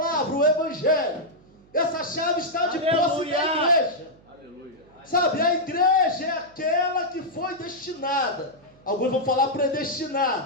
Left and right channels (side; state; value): right; noise; hum, 28 dB below the sound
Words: o evangelho. Essa chave está de posse da igreja. Aleluia. Sabe, a igreja é aquela que foi destinada, alguns vão falar